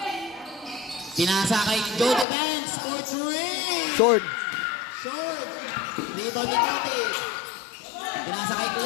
Pinasa kay Joe Defense for 3. Short. Short. Rebound ni Tuti. Pinasa kay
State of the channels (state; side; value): drops out; right; at 2.2 s